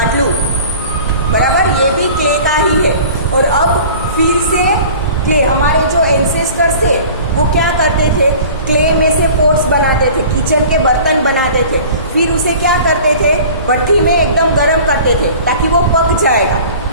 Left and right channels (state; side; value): inverted; both; correlation -0.43